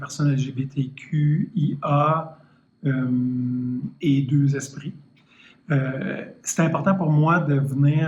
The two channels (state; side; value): identical; both; correlation 1.00